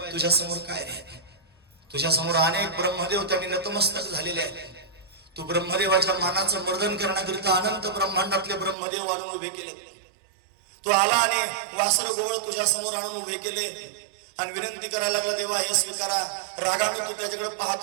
तुझ्या समोर काय रे? तुझ्या समोर अनेक ब्रह्मदेव त्यांनी नतमस्तक झालेले आहेत. तू ब्रह्मदेवाच्या मानाचं मर्दन करण्याकरिता अनंत ब्रह्मांडातले ब्रह्मदेव आणून उभे केले. तू आला आणि वासर गोवळ तुझ्या समोर आणून उभे केले आणि विनंती करायला लागला, देवा हे स्वीकारा. रागाने तू त्याच्याकडे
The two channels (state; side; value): drops out; left; at 8.8 s